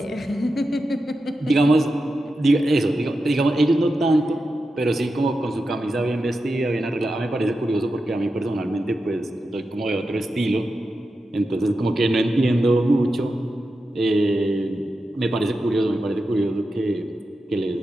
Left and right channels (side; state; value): both; normal; correlation 0.90